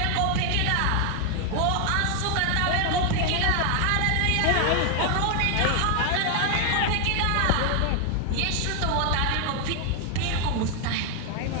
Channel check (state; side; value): different; both; correlation 0.00